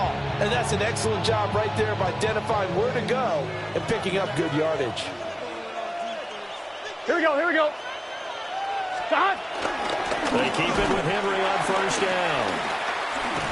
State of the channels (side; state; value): both; identical; correlation 1.00